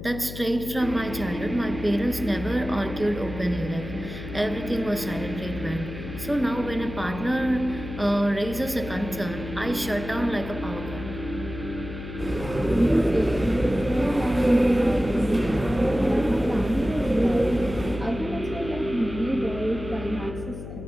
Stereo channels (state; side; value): noise; left; hum, 10 dB below the sound